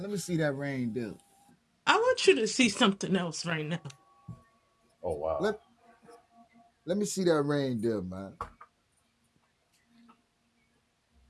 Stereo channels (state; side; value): identical; both; correlation 1.00